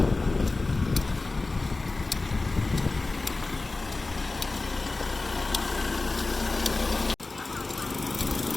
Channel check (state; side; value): quieter; right; 3.4 dB